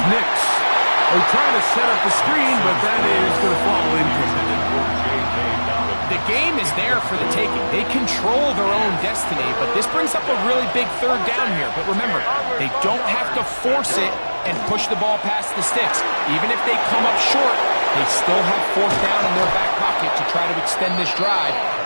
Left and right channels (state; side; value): inverted; both; correlation -1.00